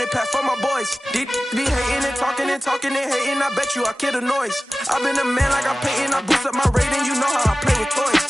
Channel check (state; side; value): normal; both; correlation 0.96